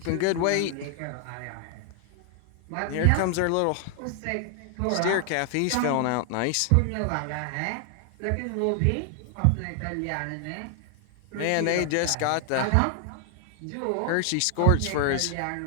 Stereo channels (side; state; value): both; different; correlation 0.00